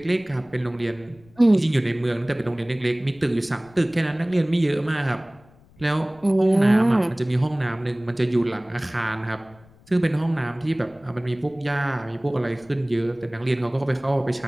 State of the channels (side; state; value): left; noise; rumble, 27 dB below the sound